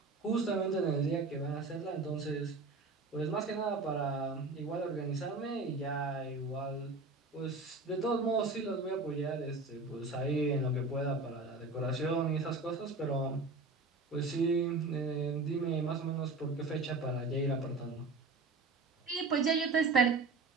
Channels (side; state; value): left; quieter; 3.7 dB